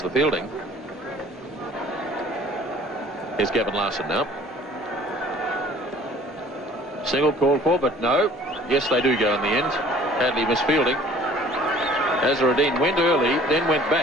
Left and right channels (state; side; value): normal; both; correlation 0.52